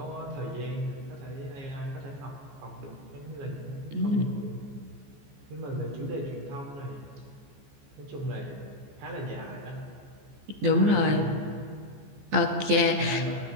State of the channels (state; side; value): late; left; 14 ms